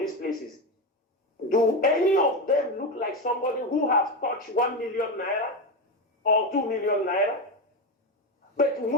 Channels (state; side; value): normal; both; correlation 0.15